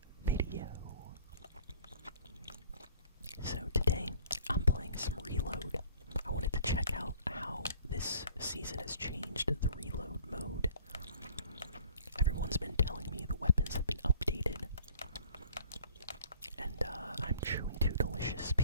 video. So today I'm playing some Reload. I wanted to check out how this season has changed the reload mode. Everyone's been telling me the weapons have been updated, and I'm chewing two delicious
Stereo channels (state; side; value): inverted; both; correlation -0.52